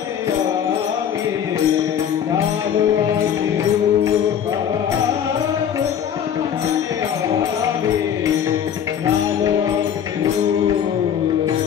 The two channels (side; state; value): right; quieter; 8.8 dB